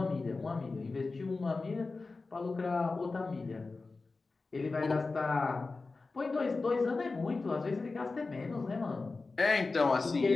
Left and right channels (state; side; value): quieter; right; 3.8 dB